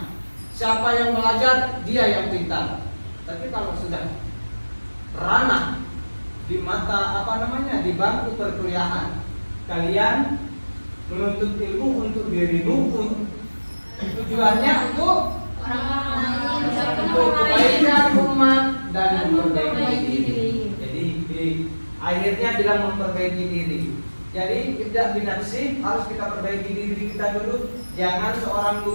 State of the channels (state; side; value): inverted; both; correlation -1.00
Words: Siapa yang belajar dia yang pintar. Tapi kalau sudah ranah di mata di bangku perkuliahan, kalian menuntut ilmu untuk dirimu, tujuannya untuk kebaikan umat dan memperbaiki diri. Jadi akhirnya bilang memperbaiki diri. Jadi tidak binafsi, harus kita perbaiki diri kita dulu. Jangan seorang